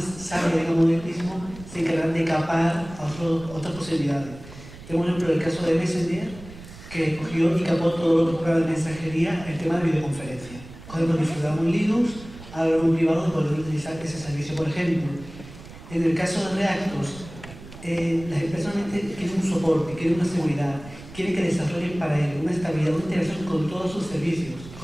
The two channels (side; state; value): right; noise; rumble, 16 dB below the sound